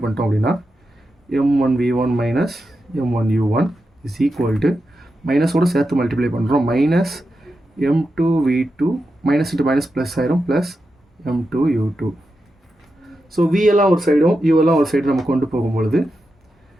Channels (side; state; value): both; normal; correlation 0.89